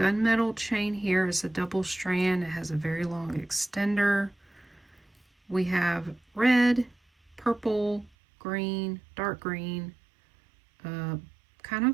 chain here. It's a double strand. It has a very long extender. We have red, purple, green, dark green, kind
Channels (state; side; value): drops out; left; at 8.1 s